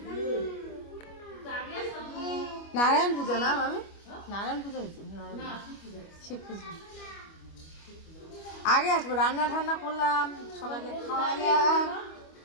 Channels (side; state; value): right; late; 25 ms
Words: নারায়ণ পূজা না মামি, নারায়ণ পূজা হয়েছে, শিব পুজো। আগে আসবো, রান্না ঠান্না করলাম, সবাইকে খাওয়াইলাম,